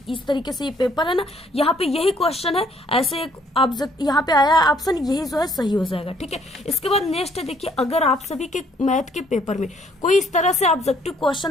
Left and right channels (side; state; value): both; normal; correlation 0.64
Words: इस तरीके से ये पेपर है ना, यहाँ पे यही क्वेश्चन है, ऐसे एक ऑब्जेक्ट यहाँ पे आया ऑप्शन, यही जो है सही हो जाएगा। ठीक है, इसके बाद नेक्स्ट है, देखिए अगर आप सभी के मैथ के पेपर में कोई इस तरह से ऑब्जेक्टिव